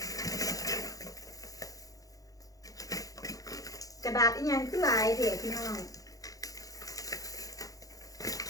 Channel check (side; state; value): right; late; 0.17 ms